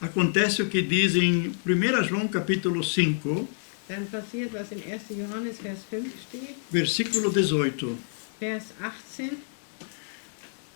acontece o que diz em 1 João capítulo 5, dann passiert, was in 1. Johannes Vers 5 steht, versículo 18. Vers 18.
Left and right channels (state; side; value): silent; right; digital silence